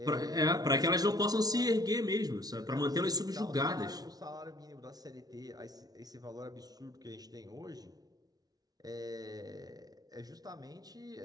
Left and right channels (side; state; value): left; late; 0.19 ms